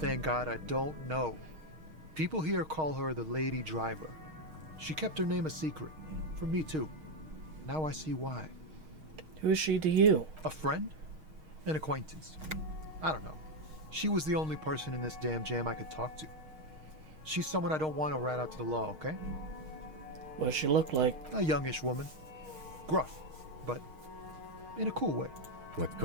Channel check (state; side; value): late; left; 6.4 ms